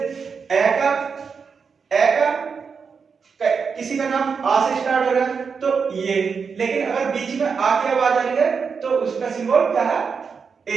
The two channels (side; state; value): left; quieter; 5.7 dB